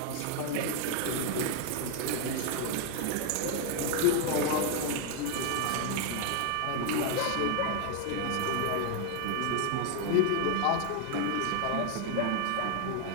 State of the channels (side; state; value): both; different; correlation 0.01